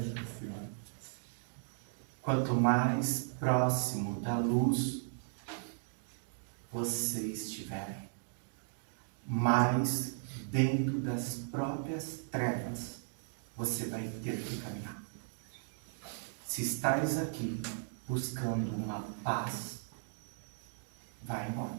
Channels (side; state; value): left; silent; digital silence